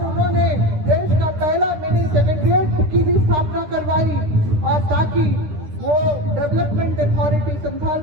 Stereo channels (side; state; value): left; late; 9.9 ms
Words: उन्होंने देश का पहला मिनी सेक्रेटेरिएट की भी स्थापना करवाई और ताकि वो डेवलपमेंट अथॉरिटी, संथाल